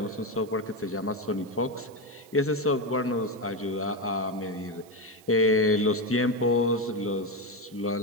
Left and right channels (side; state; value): right; noise; hiss, 25 dB below the sound